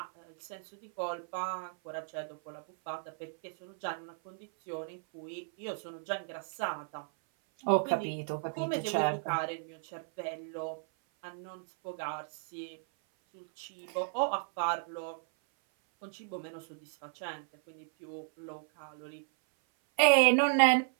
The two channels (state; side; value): silent; left; 55 dB below the other